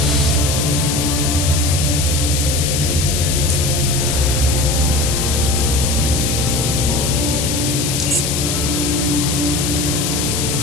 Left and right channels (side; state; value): left; noise; hiss, 1 dB below the sound